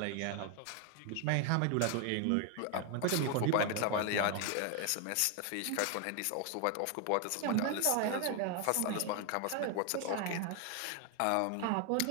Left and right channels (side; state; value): both; different; correlation 0.01